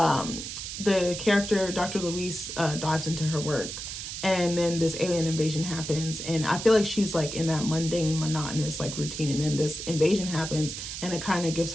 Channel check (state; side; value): noise; right; hiss, 7 dB below the sound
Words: character, Dr. Louise, dives into her work, and then this alien invasion happens, and I feel like she's like in that mundane, monotonous like routine, and then this invasion happens, and it kind of gives